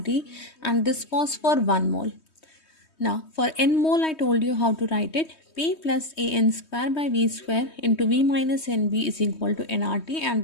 and this was for 1 mole. Now for n mole I told you how to write it. P plus AN square by V square into V minus NV is equal to nRT, and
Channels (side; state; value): right; late; 3.2 ms